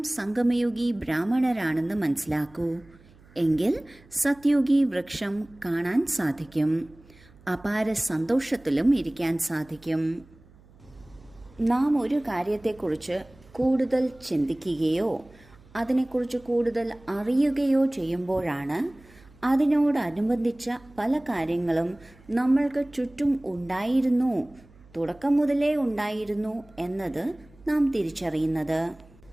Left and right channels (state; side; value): noise; right; hum, 26 dB below the sound